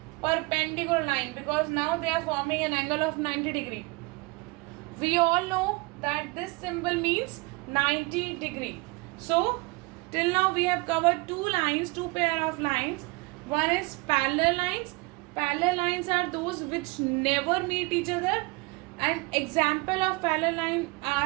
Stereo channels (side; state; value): left; quieter; 26.0 dB